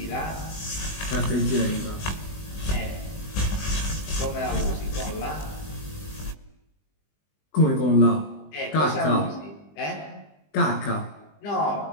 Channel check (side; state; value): right; late; 20 ms